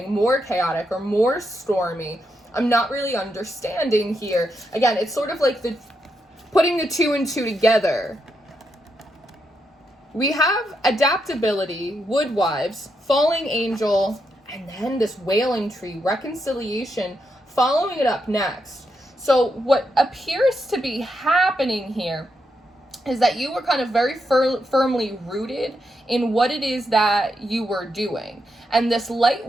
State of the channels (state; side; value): normal; both; correlation 0.82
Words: more chaotic or more stormy? I'm not really understanding here. Again, it's sort of like the putting the 2 and 2 together, we have adaptability, woodwives, falling angel, and then this wailing tree, reconciliation, following it up next. So what appears to be happening here is that you were kind of very firmly rooted in what it is that you were doing. And this light